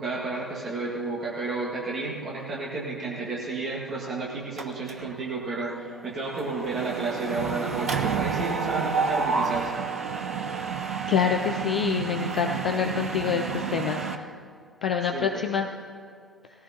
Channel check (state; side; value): normal; both; correlation 0.33